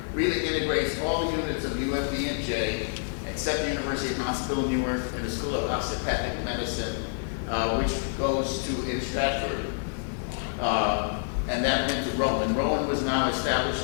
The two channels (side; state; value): right; silent; digital silence